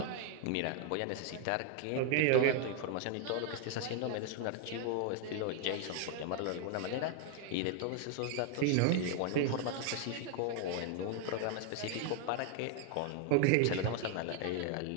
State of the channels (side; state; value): both; different; correlation 0.00